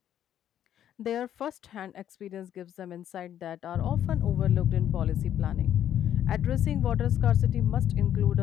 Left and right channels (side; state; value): right; quieter; 10.5 dB